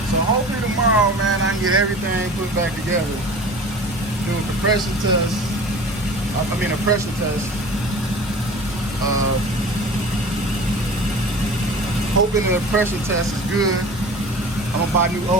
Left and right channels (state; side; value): normal; both; correlation 0.40